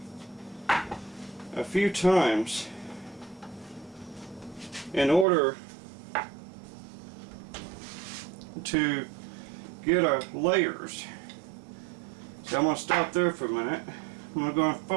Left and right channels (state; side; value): drops out; left; at 5.2 s